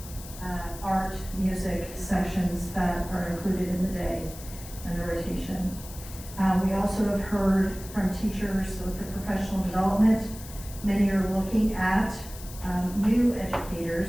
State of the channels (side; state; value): left; noise; hiss, 15 dB below the sound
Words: art, music sessions that are included in the day and the rotation. We also have heard from teachers with the professional development. Many are looking at new